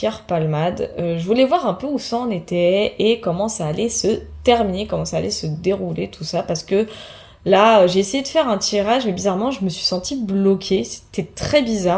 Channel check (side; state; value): both; identical; correlation 1.00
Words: Palmade. Je voulais voir un peu où ça en était et comment ça allait se terminer, comment ça allait se dérouler, tout ça. Parce que là, j'ai essayé de faire un tirage, mais bizarrement, je me suis sentie bloquée. C'était très